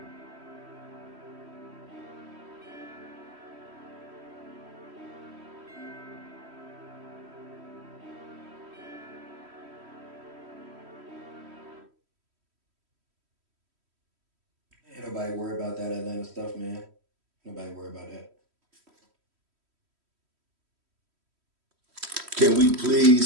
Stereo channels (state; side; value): late; left; 3.1 ms